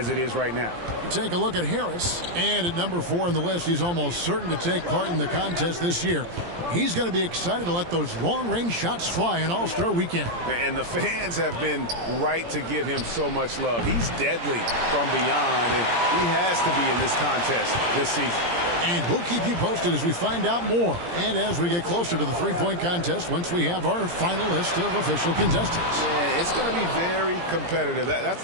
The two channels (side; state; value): left; late; 17 ms